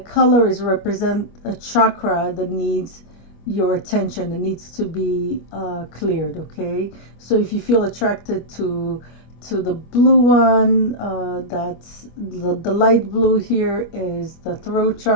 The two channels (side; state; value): right; late; 25 ms